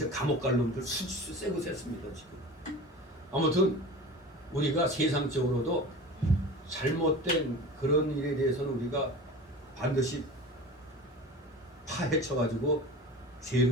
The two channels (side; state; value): both; normal; correlation 0.35